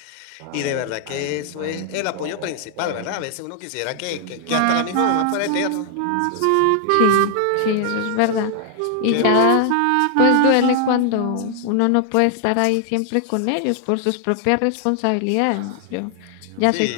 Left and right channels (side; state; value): both; different; correlation 0.00